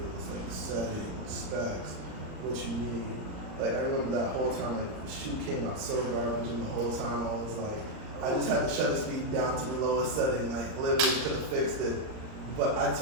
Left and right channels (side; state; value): left; late; 38 ms